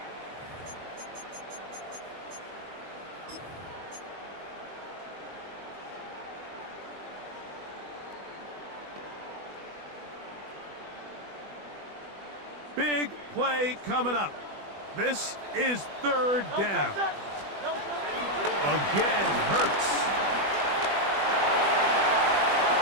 Big play coming up. This is third down. Again, Hurts.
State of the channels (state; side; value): late; left; 20 ms